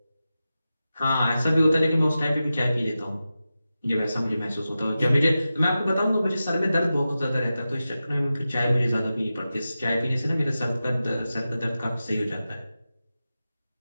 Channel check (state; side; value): inverted; both; correlation -0.93